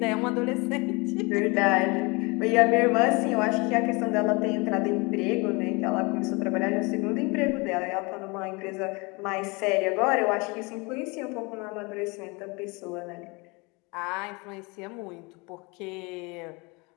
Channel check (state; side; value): quieter; right; 27.6 dB